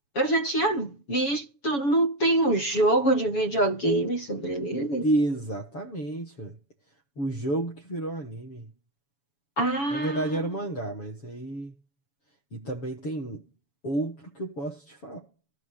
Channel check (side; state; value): right; late; 7.1 ms